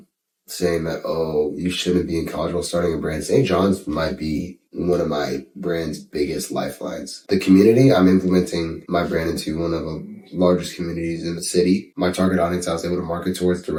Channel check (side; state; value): both; identical; correlation 1.00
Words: saying that, oh, you shouldn't be in college while starting a brand. St. John's might be one of my brand's biggest lifelines. The community, I'm implementing my brand into one of the largest communities in the city. My target audience I was able to market towards